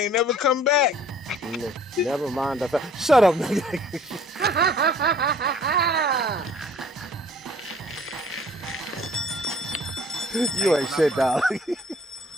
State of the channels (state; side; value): normal; both; correlation 0.53